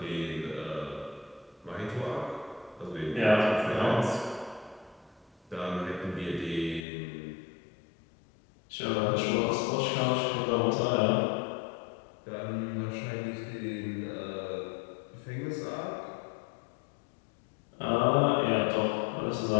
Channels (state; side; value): drops out; right; at 6.9 s